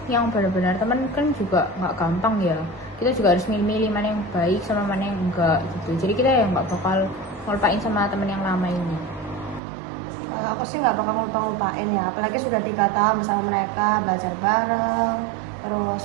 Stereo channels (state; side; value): drops out; left; at 9.6 s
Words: yang benar-benar temen kan juga nggak gampang ya. Kita juga harus milih-milih mana yang baik sama mana yang enggak gitu. Jadi kita yang nggak bakal ngelupain sama temen yang lama ini. Kalau aku sih nggak bakal ngupain ya, apalagi sudah 3 tahun bersama mereka, belajar bareng, terus